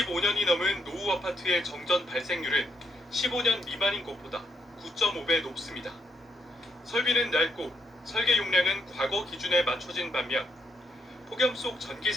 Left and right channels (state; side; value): normal; both; correlation 0.76